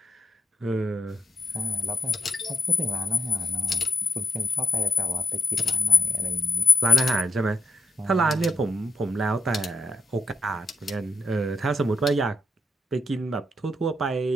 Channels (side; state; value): both; normal; correlation 0.82